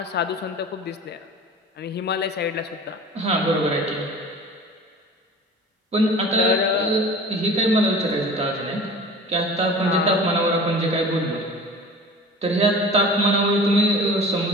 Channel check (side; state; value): both; normal; correlation 0.40